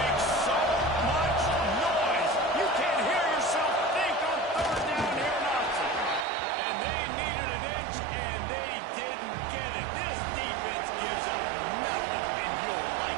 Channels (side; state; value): left; drops out; at 6.2 s